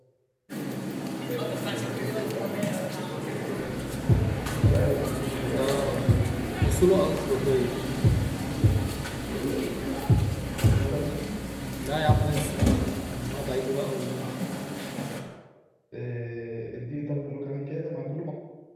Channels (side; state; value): both; identical; correlation 1.00